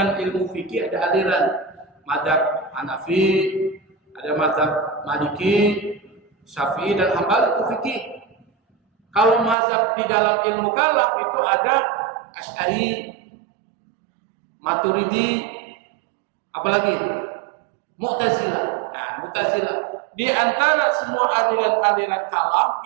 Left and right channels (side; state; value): left; drops out; at 9.6 s